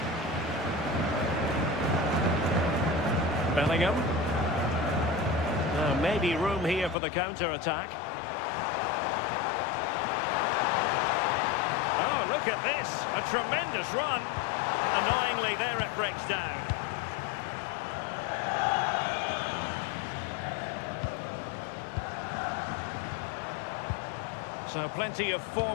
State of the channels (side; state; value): right; drops out; at 7.0 s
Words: Bellingham. Maybe room here for the counter-attack. Oh, look at this. A tremendous run. Annoyingly, there it breaks down. So plenty of